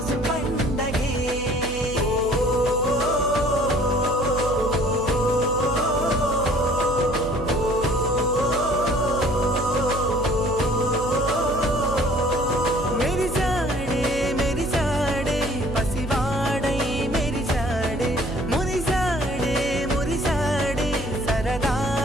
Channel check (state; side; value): noise; right; hum, 10 dB below the sound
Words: పండగే మెరిసాడే మెరిసాడే పసివాడై మెరిసాడే మురిసాడే మురిసాడే